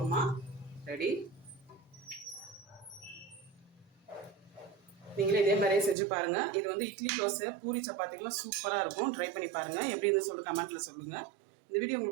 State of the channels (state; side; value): drops out; left; at 6.0 s